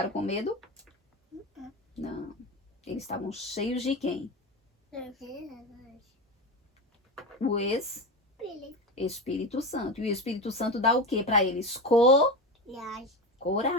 com medo? Não. Eles estavam cheios de quem? O Espírito Santo. E o Espírito Santo dá o que para eles?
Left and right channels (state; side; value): normal; both; correlation 0.22